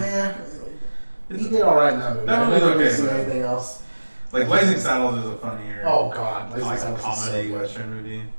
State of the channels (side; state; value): both; inverted; correlation -1.00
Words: He did all right in that movie. That I movie's never okay. seen anything else. Like Blazing Saddles is a funnier. Oh God, Blazing Blazing Saddles Saddles is comedy so good. western movie.